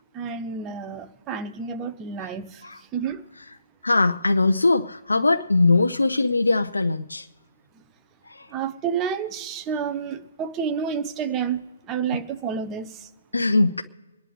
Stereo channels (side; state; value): both; inverted; correlation -0.75